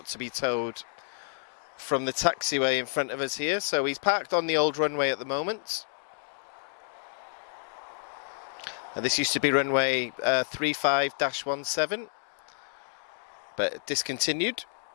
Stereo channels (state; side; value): silent; right; digital silence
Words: to be towed from the taxiway in front of us here. So he's parked on the old runway at the moment. This used to be runway 35-17, but discontinued.